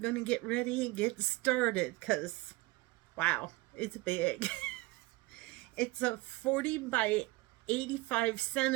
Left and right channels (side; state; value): left; quieter; 21.4 dB